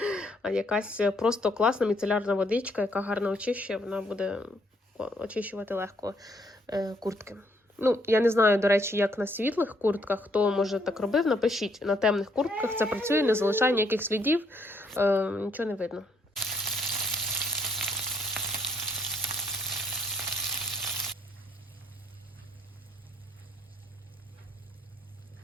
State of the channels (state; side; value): normal; both; correlation 0.70